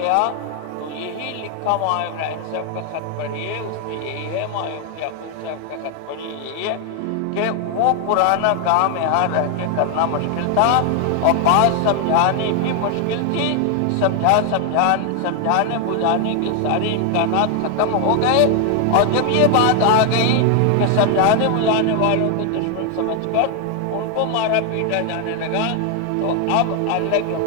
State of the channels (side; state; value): both; different; correlation 0.00